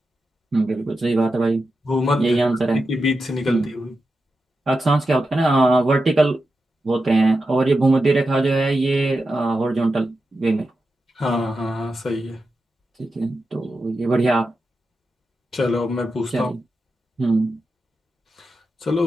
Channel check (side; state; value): both; normal; correlation 0.90